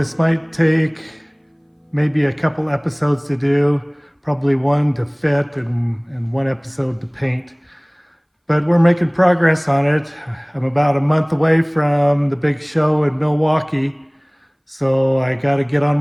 might take maybe a couple episodes to do, probably one to fit and one episode to paint. But we're making progress on it. I'm about a month away from the big show in Milwaukee, so I got to get on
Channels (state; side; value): identical; both; correlation 1.00